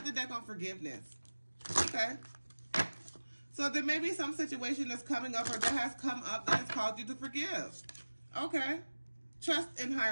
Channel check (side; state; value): both; inverted; correlation -1.00